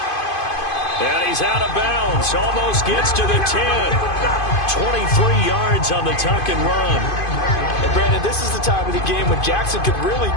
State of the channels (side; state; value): right; late; 2.5 ms